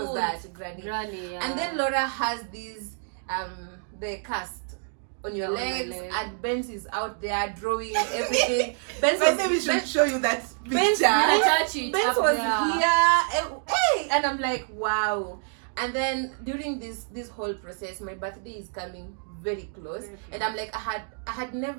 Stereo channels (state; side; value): silent; left; 60 dB below the other